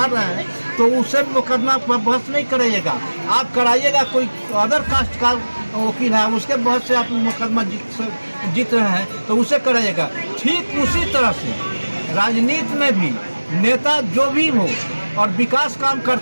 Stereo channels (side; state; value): both; inverted; correlation -1.00